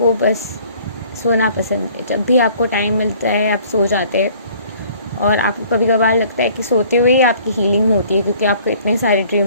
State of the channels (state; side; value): inverted; both; correlation -0.55